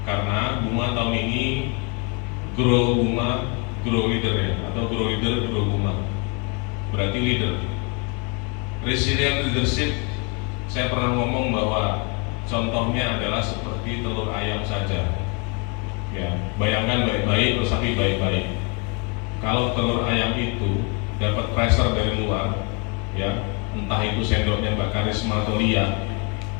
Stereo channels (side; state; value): right; quieter; 32.3 dB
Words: Karena Buma tahun ini grow Buma, grow leader ya, atau grow leader, grow Buma. Berarti leader. Resilient leadership, saya pernah ngomong bahwa contohnya adalah seperti telur ayam saja. Ya, bayangkan baik-baik, resapi baik-baik. Kalau telur ayam itu dapat pressure dari luar, ya, entah itu sendoknya Mbak Karisma atau Lia,